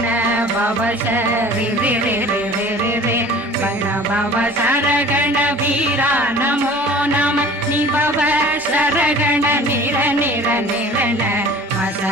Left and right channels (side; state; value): both; normal; correlation 0.45